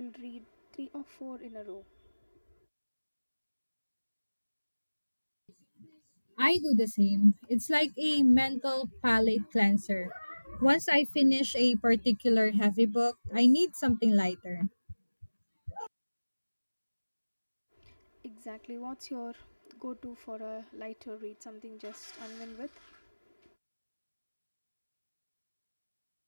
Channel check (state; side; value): inverted; both; correlation -1.00